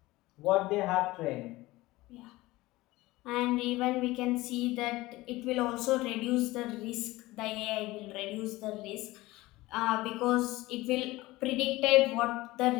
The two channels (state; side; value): quieter; right; 19.2 dB